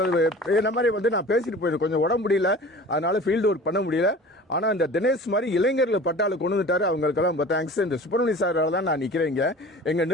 இந்த மாதிரி நான் பேசிட்டு போயிடுறேன். கொஞ்சம் உடம்பு முடியல, அதனால ஃபீல்டு ஒர்க் பண்ண முடியல. ஆனா இந்த தினேஷ் மாதிரி இளைஞர்கள் பட்டாளு கொண்டு வந்துட்டாரு. அவங்களுக்கெல்லாம் ரொம்ப தேங்க்ஸ். இந்த சுப்பிரமணிய சாரால தான் நான் நிக்கிறேன். எங்க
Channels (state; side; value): normal; both; correlation 0.41